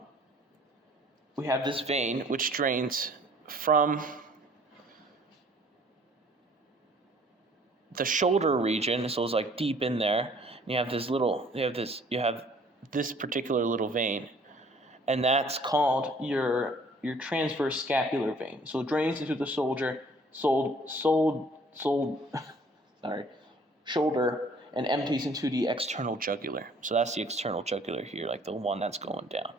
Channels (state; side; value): normal; both; correlation 0.56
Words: this vein which drains from the shoulder region, so it's like deep in there. And you have this particular little vein, and that's called your transverse scapular vein. So it drains into the shoulder, and empties into the external jugular. So that's the external jugular here, like the one that's going down.